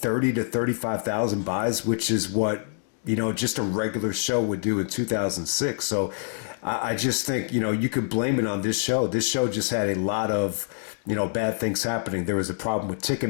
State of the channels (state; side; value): silent; right; 61 dB below the other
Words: to 35,000 buys, which is what, just a regular show would do in 2006. So I just think, you could blame it on this show. This show just had a lot of, bad things happening. There was a problem with